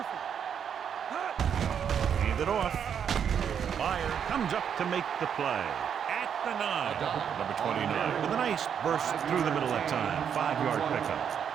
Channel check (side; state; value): left; quieter; 8.0 dB